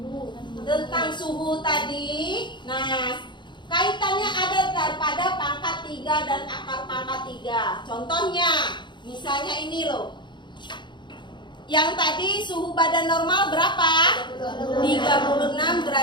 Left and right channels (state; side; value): late; right; 0.22 ms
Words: Tentang suhu tadi. Nah, kaitannya ada daripada pangkat 3 dan akar pangkat 3. Contohnya, misalnya ini loh. Yang tadi suhu badan normal berapa? 36